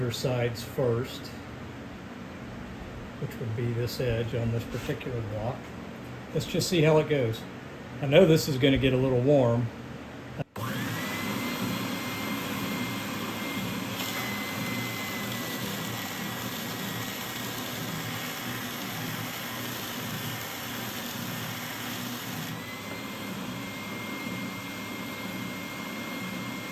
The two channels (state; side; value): identical; both; correlation 1.00